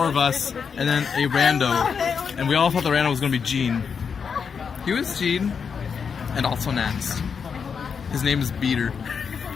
of us, and then a rando, and we all thought the rando was gonna be Gene. He was Gene, and also Nance. His name is Beater.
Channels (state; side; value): quieter; right; 6.3 dB